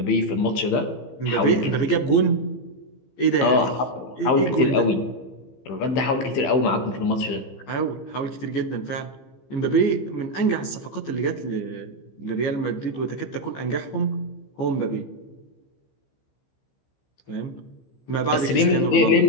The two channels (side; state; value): right; late; 15 ms